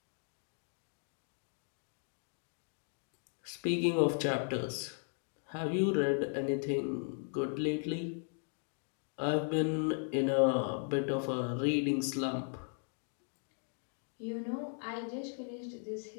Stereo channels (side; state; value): right; silent; 53 dB below the other